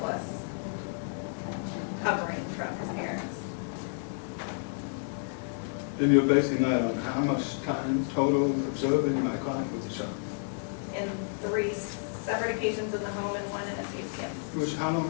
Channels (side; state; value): right; silent; digital silence